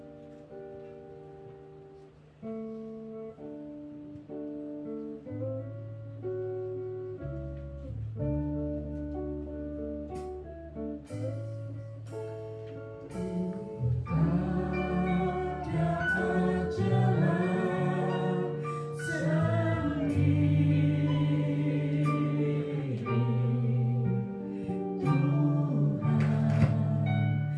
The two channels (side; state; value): both; identical; correlation 1.00